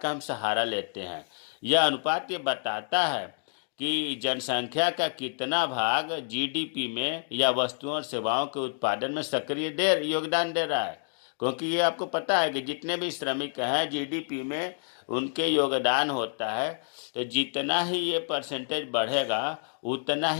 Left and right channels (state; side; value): silent; right; digital silence